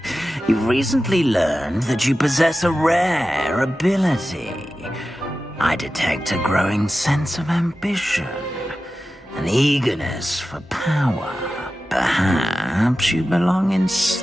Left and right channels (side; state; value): both; normal; correlation 0.94